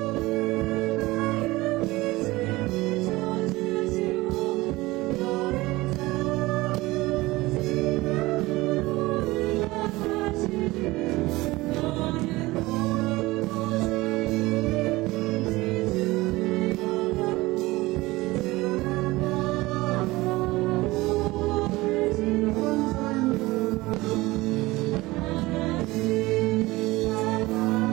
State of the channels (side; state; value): left; quieter; 20.2 dB